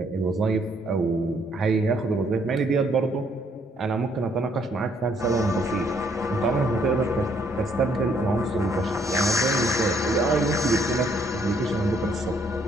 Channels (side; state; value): both; normal; correlation 0.68